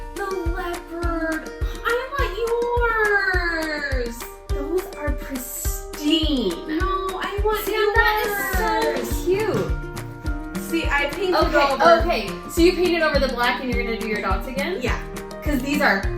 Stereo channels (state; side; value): identical; both; correlation 1.00